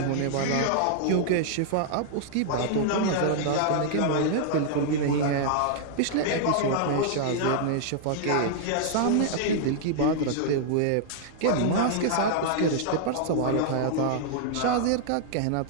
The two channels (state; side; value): different; both; correlation -0.01